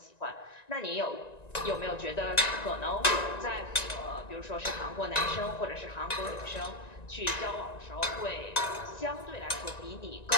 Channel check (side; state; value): right; late; 1.9 ms